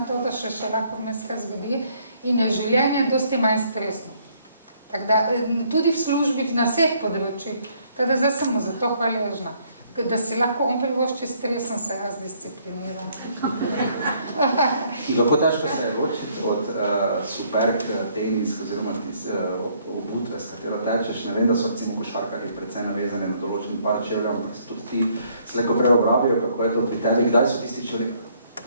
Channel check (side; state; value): both; inverted; correlation -0.66